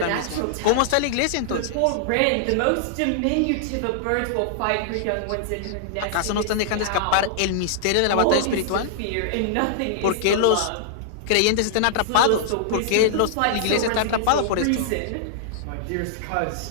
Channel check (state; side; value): different; both; correlation -0.01